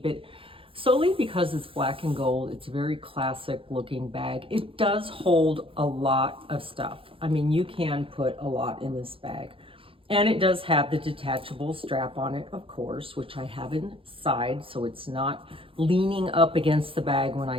it solely because it's black and gold. It's a very classic looking bag. It does hold a lot of stuff. I mean, you can put a lot in this bag. And it does have the detachable strap on it, of course, which I have inside, so it's not leaning up against the bag when I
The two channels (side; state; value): left; late; 0.26 ms